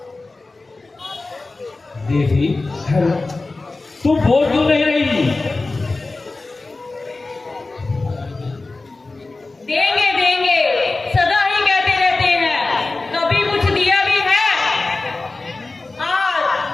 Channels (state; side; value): quieter; right; 3.4 dB